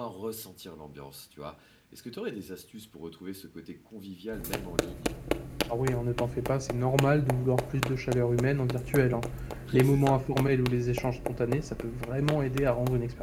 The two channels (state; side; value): identical; both; correlation 1.00